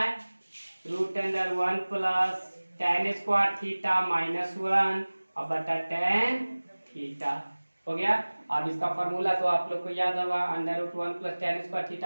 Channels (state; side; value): inverted; both; correlation -1.00